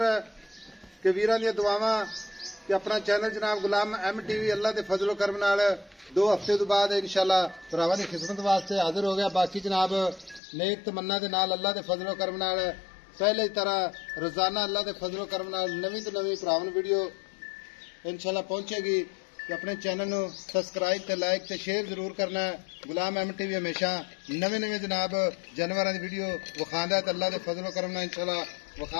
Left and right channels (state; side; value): drops out; right; at 10.4 s